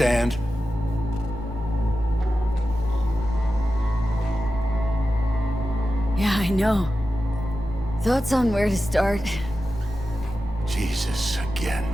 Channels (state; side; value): normal; both; correlation 0.92